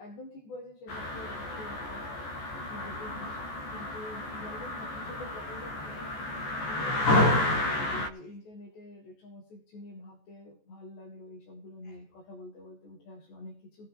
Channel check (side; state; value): right; late; 14 ms